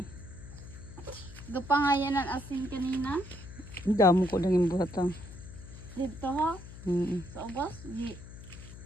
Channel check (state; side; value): noise; left; hum, 14 dB below the sound